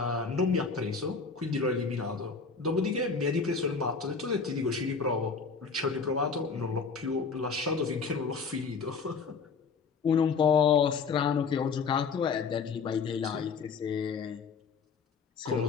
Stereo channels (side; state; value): right; quieter; 5.2 dB